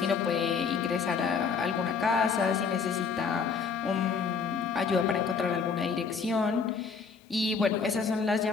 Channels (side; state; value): right; quieter; 5.6 dB